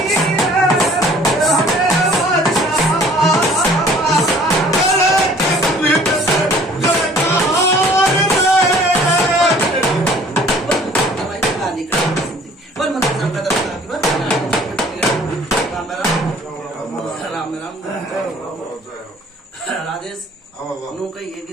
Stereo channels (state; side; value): normal; both; correlation 0.53